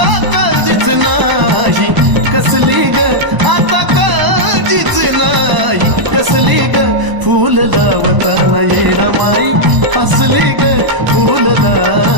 काळजीच नाही कसली ग आता काळजीच नाही कसली ग फूल लावताना येडा माई हसली ग फूल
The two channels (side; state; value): left; late; 1.0 ms